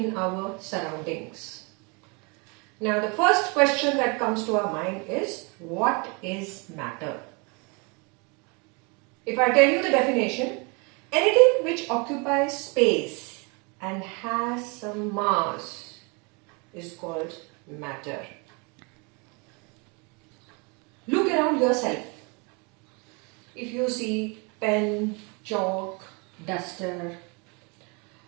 our surroundings. Now the first question that comes to our mind is what is matter? If I tell you the definition, anything which occupies space and has some mass is called matter. Look around yourself. If you see pen, chalk, duster,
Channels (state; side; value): quieter; left; 31.3 dB